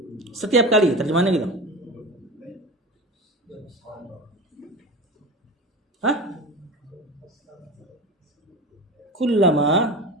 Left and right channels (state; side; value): normal; both; correlation 0.30